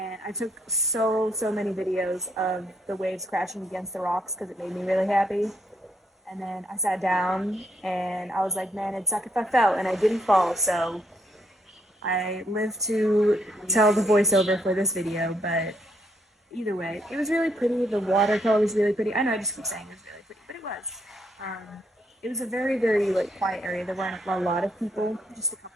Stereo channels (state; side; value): normal; both; correlation 0.74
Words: I took so many videos of the waves crashing against the rocks because it made me really happy. And then I sat down and I was like, man, it'd suck if I fell, and I didn't fall, so I lived to tell the voiceover for this video. But either way, it was really pretty. The watercolor was really pretty. I know I just keep saying it was really pretty, but it was. Um, it was a very, very like quiet area. There weren't a lot of people, just a